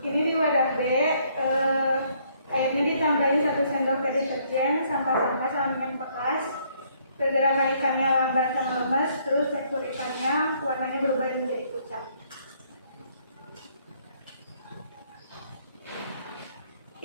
di wadah B, airnya ditambahin 1 sendok teh deterjen, sampah-sampah sampingan bekas, pergerakan ikannya lambat dan lemes, terus tekstur ikannya warnanya berubah menjadi pucat.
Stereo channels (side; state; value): both; inverted; correlation -0.67